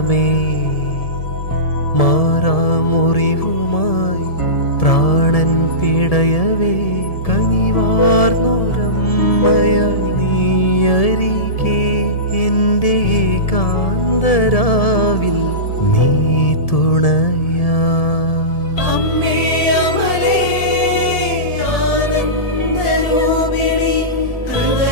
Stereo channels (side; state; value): right; late; 1.7 ms